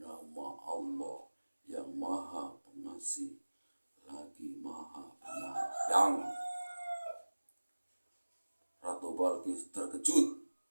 Allah yang Maha Pengasih lagi Maha Penyayang. Ratu Balkis terkejut.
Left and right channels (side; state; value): both; inverted; correlation -1.00